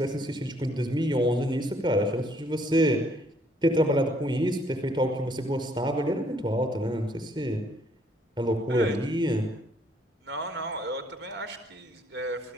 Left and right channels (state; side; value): normal; both; correlation 0.66